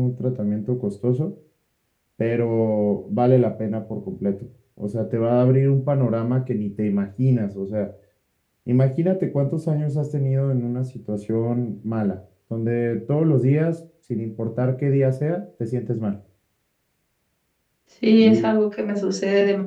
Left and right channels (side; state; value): both; identical; correlation 1.00